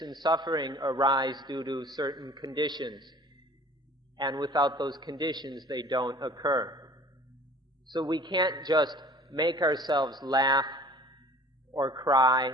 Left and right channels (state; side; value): normal; both; correlation 0.48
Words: and suffering arise due to certain conditions, and without those conditions they don't occur. So we can't just make ourselves laugh or cry,